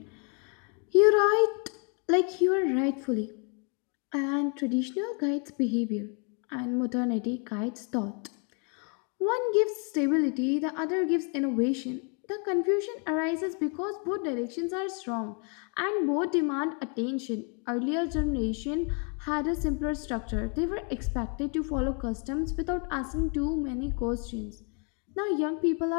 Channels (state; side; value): quieter; right; 38.2 dB